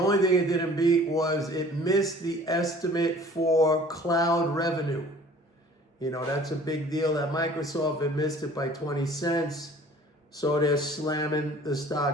thing it didn't beat was it missed the estimate for cloud revenue. You know, that's a big deal at Microsoft. It missed it by 20 cents. So they're slamming the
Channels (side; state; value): both; normal; correlation 0.50